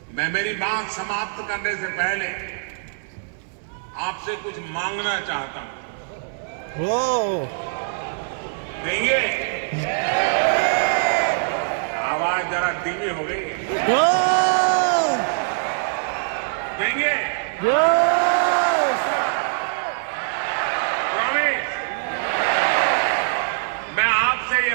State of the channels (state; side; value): silent; left; 58 dB below the other